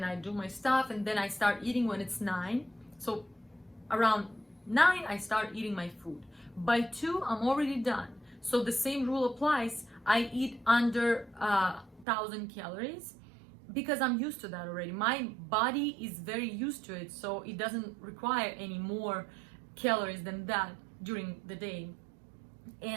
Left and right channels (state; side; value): drops out; left; at 12.1 s